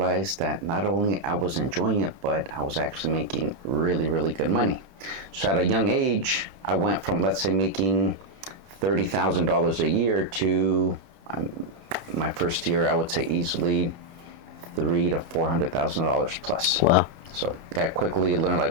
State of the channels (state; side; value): late; left; 29 ms